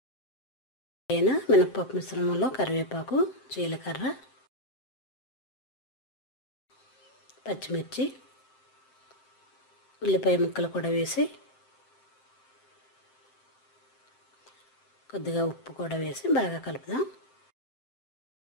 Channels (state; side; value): late; right; 7.7 ms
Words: మినపప్పు మిశ్రమంలో కరివేపాకు, జీలకర్ర, పచ్చిమిర్చి, ఉల్లిపాయ ముక్కలు కూడా వేసి కొద్దిగా ఉప్పు కూడా వేసి బాగా కలుపుదాం.